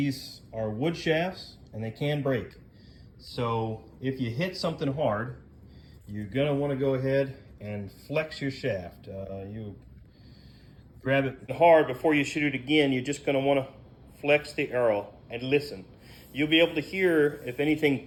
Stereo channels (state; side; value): identical; both; correlation 1.00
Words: are wood shafts and they can break. So if you hit something hard, you're gonna want to go ahead and flex your shaft. You grab it hard before you shoot it again. You're just gonna want to flex the arrow and listen. You'll be able to hear if anything